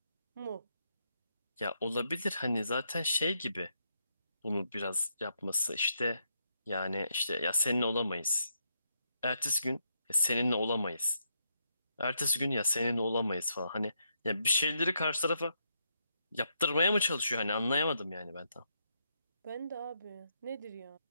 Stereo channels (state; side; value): inverted; both; correlation -0.79